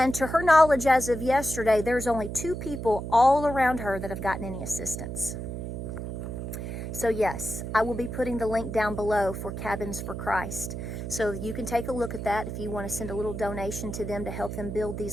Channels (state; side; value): noise; right; hum, 6 dB below the sound